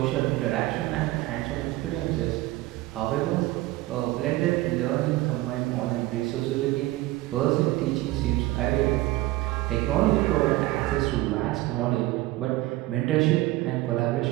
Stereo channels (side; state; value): left; quieter; 17.9 dB